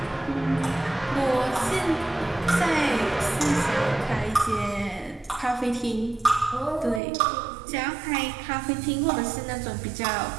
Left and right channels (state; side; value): drops out; left; at 7.0 s